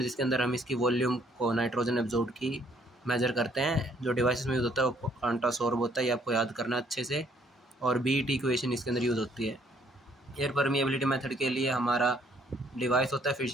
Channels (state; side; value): normal; both; correlation 0.65